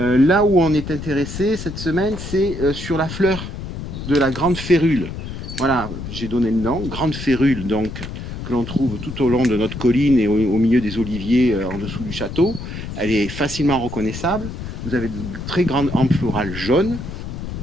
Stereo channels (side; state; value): left; noise; rumble, 8 dB below the sound